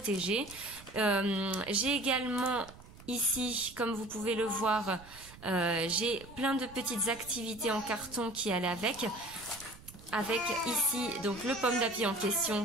J'ai également ici, comme vous pouvez le voir, j'ai plein de petites activités en carton qui allaient avec ici donc le pomme d'api en question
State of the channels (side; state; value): right; noise; rumble, 19 dB below the sound